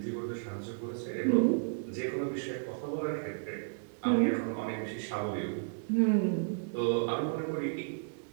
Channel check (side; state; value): left; silent; digital silence